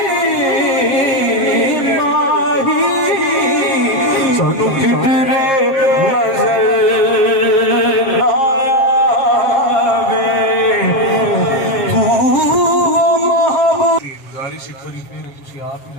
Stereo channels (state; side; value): late; right; 7.4 ms